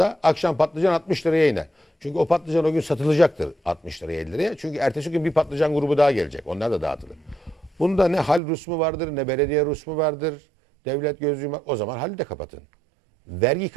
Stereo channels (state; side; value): drops out; left; at 8.4 s